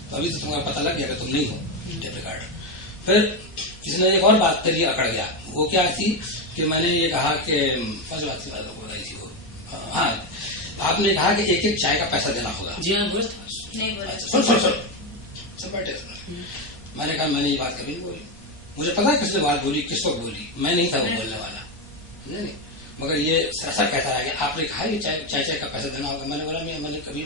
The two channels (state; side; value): normal; both; correlation 0.11